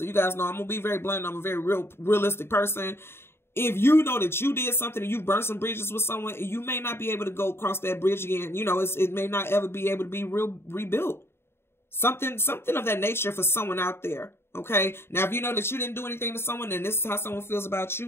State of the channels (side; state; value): right; late; 0.12 ms